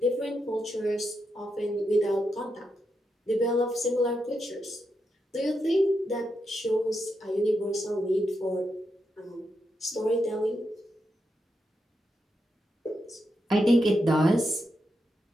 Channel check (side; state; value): both; normal; correlation 0.85